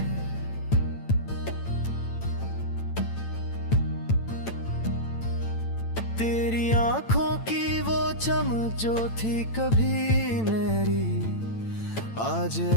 तेरी आँखों की वो चमक जो थी कभी मेरी, आज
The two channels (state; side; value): late; right; 9.0 ms